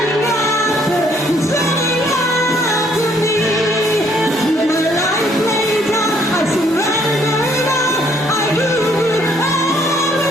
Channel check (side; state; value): both; normal; correlation 0.66